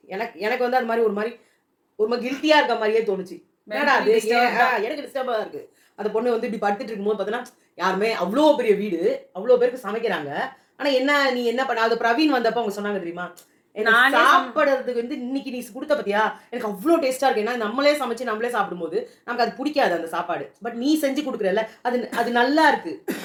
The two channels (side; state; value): both; identical; correlation 1.00